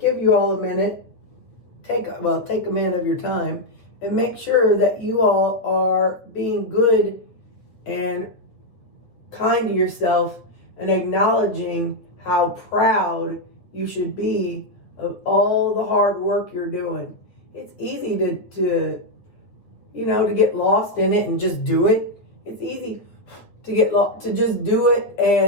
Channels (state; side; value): late; right; 8.8 ms